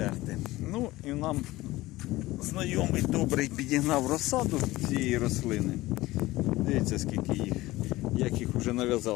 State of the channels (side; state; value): right; quieter; 18.3 dB